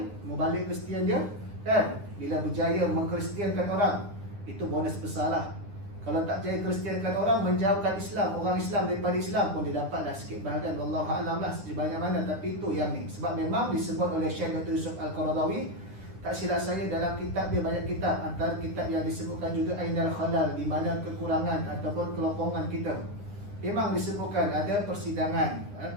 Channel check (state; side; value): late; left; 9.9 ms